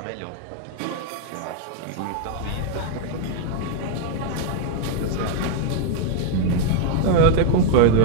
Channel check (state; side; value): different; both; correlation 0.01